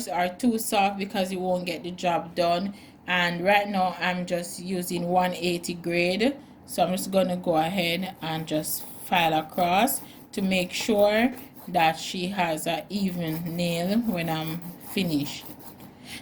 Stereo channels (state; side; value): identical; both; correlation 1.00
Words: or too soft, because you won't get the job done. And right now I'm just using 180 grade, so I'm just gonna go ahead and just file across to make sure that she has an even nail when I'm finished.